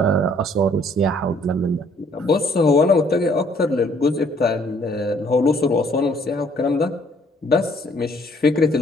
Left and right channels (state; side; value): normal; both; correlation 0.62